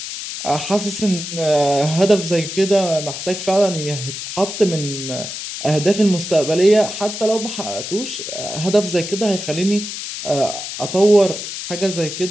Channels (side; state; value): left; noise; hiss, 7 dB below the sound